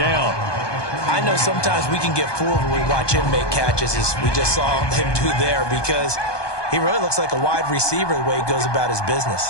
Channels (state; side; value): late; right; 1.2 ms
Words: I know sometimes we can get fooled when we watch him make catches, as we just saw him do there, because he really looks like a wide receiver the way he goes about his